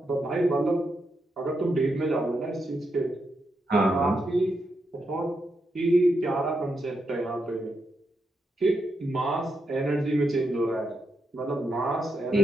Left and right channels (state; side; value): normal; both; correlation 0.83